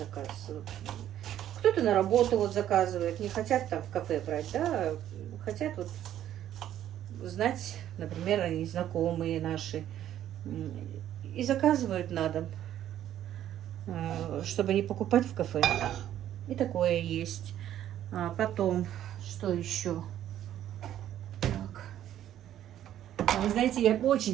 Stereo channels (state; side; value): quieter; left; 11.5 dB